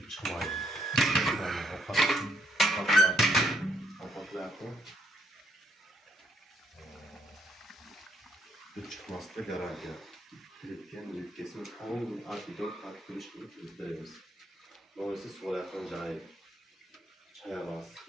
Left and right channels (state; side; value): normal; both; correlation 0.73